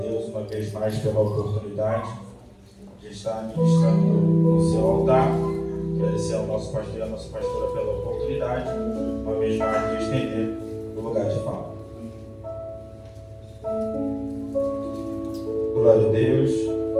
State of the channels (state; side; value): identical; both; correlation 1.00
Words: uma vez mais pela oportunidade de estar ministrando no seu altar. Agradecer ao nosso pastor e à nossa pastora pela oportunidade, uma vez mais, de estender o lugar de fala. Glória a Deus.